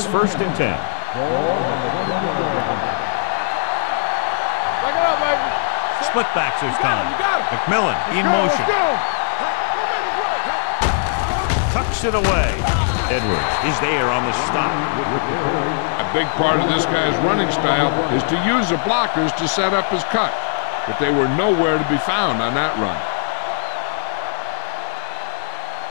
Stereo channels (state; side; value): silent; right; digital silence